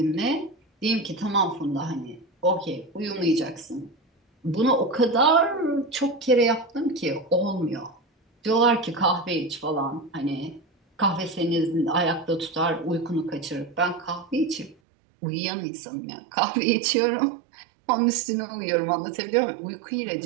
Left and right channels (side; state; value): left; drops out; at 14.8 s